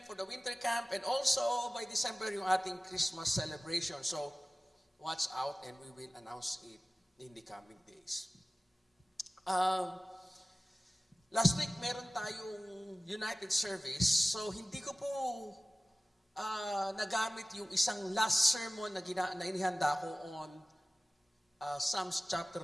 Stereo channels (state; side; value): normal; both; correlation 0.97